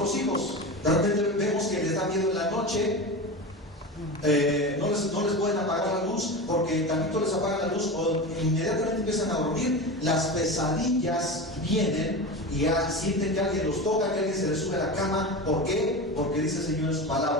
hijos? De repente vemos que les da miedo en la noche, no les pueden apagar la luz, porque tantito les apagan la luz o inmediatamente empiezan a dormir. Las pesadillas vienen y ya sienten que alguien los toca, que alguien se les sube a la cama. ¿Por qué? Porque dice el Señor en su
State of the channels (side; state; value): both; normal; correlation 0.26